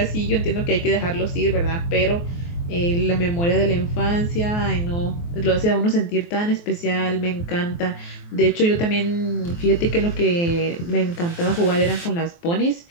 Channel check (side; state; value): right; late; 23 ms